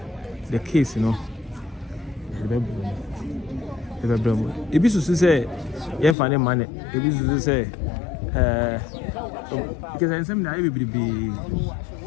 the case, you know. If you say, yeah, funny money. If you say, because I said that everybody be.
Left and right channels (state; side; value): drops out; right; at 6.2 s